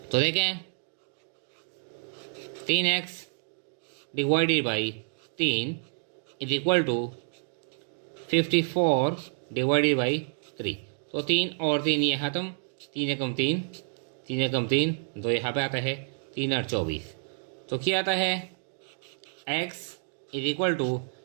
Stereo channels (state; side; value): silent; left; digital silence